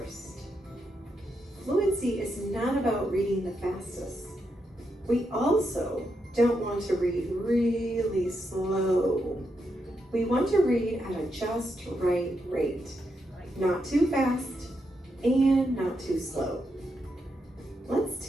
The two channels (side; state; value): both; normal; correlation 0.83